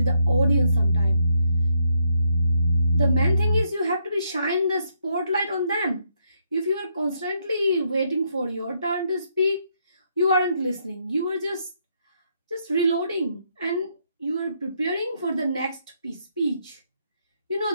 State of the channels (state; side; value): inverted; both; correlation -0.76